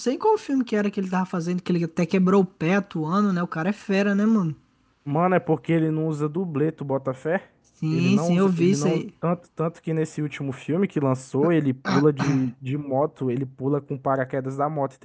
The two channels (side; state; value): both; identical; correlation 1.00